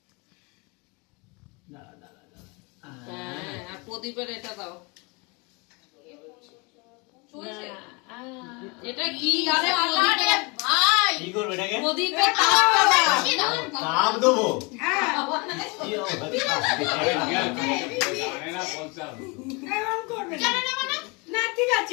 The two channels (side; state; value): right; quieter; 29.1 dB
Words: হ্যাঁ, আর প্রদীপের এটা দাও। চলছে। এটা কি? আরে প্রদীপের ভাই। কি করবে এটাকে? প্রদীপের তাপটা দাও। তাপ দেবো? হ্যাঁ। কি হবে? জানে না বলতে হবে। এরকম করবে না। জানো না মানে? না ঠিক